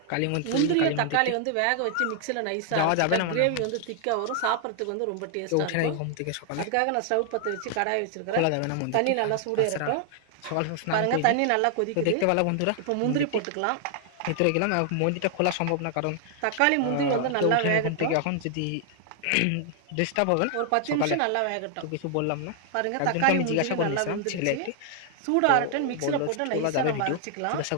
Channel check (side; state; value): both; different; correlation 0.00